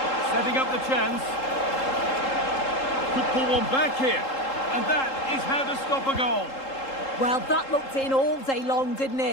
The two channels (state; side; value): late; right; 3.7 ms